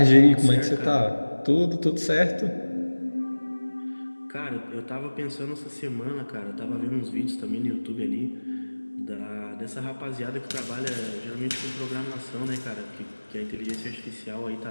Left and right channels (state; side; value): inverted; both; correlation -1.00